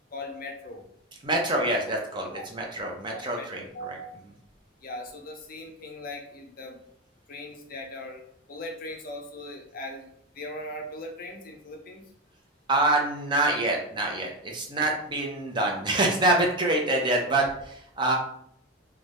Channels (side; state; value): both; normal; correlation 0.10